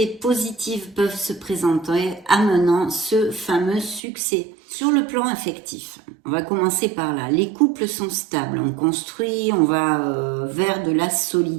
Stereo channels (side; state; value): left; drops out; at 4.0 s